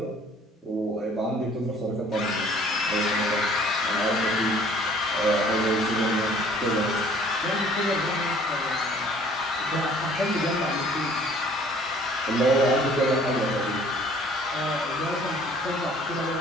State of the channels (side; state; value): both; normal; correlation 0.55